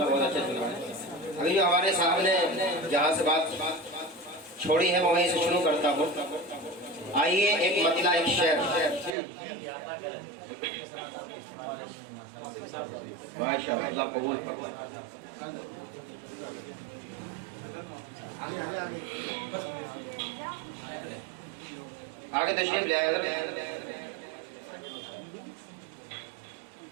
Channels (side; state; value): left; drops out; at 9.2 s